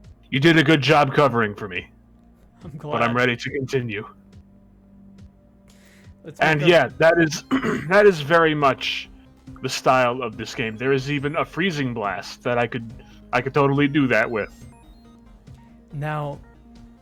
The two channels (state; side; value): identical; both; correlation 1.00